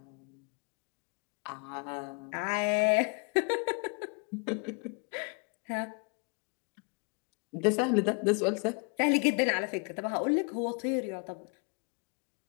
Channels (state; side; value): quieter; right; 37.3 dB